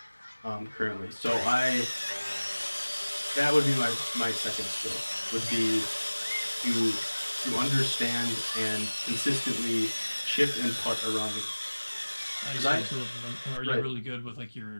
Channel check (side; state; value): both; inverted; correlation -1.00